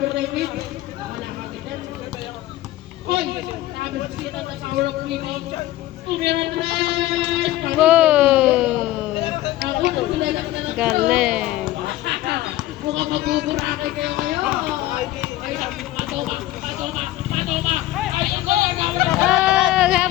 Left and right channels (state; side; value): quieter; right; 15.5 dB